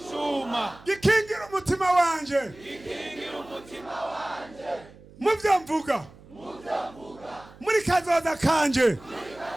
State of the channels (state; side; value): noise; right; hum, 22 dB below the sound